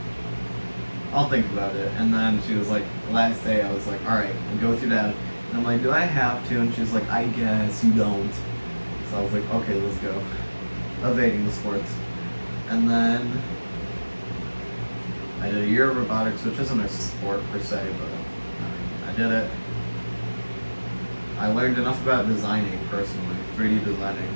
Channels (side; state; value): both; inverted; correlation -1.00